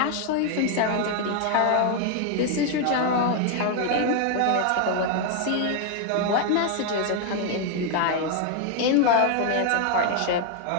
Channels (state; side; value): different; both; correlation 0.01